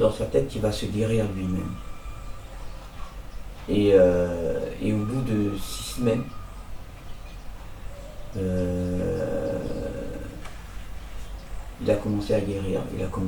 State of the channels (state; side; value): identical; both; correlation 1.00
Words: sa tête qu'il va se guérir lui-même. Et au bout de 6 semaines, il a commencé à guérir, il a